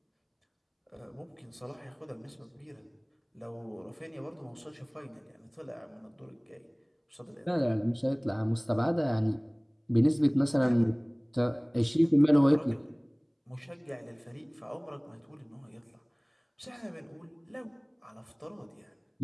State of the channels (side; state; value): both; identical; correlation 1.00